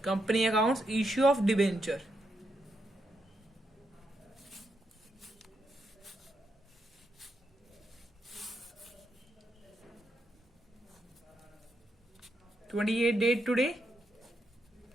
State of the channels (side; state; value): both; normal; correlation 0.81